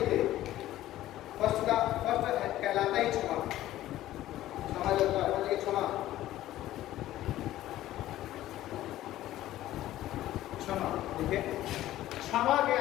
फर्स्ट कहलाता ही क्षमा जो होता है क्षमा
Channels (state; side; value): quieter; right; 14.4 dB